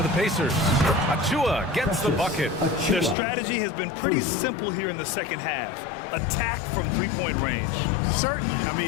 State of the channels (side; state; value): right; drops out; at 3.2 s